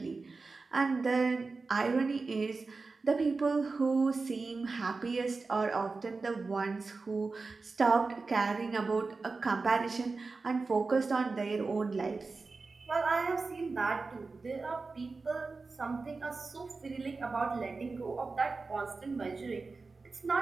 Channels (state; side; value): quieter; left; 4.0 dB